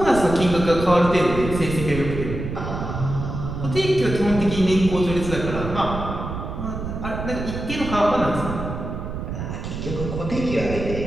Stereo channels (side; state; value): right; noise; rumble, 6 dB below the sound